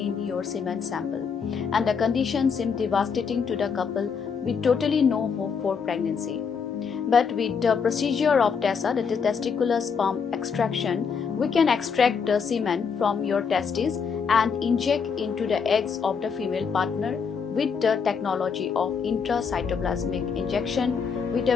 your semen sample, and the condition seems devastating to the couple with totally no hope for pregnancy. But with the procedure of TESA, that is testicular sperm extraction, we can extract the semen from your testes and inject into the eggs of the female partner with the technology of intracytoplasmic injection with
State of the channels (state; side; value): quieter; right; 6.0 dB